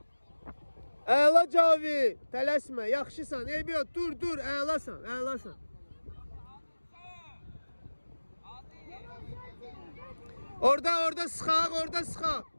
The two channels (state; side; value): inverted; both; correlation -1.00